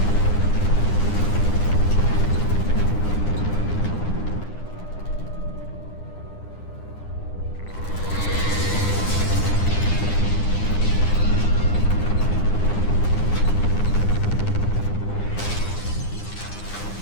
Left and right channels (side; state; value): right; late; 9.8 ms